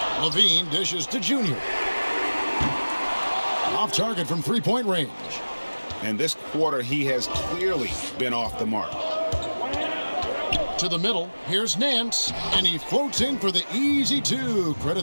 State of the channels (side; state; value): both; inverted; correlation -1.00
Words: LaVine dishes to Junior. Off target from 3-point range. And this quarter, he has clearly been off the mark. To the middle, here's Nance, and he floats in for the easy 2.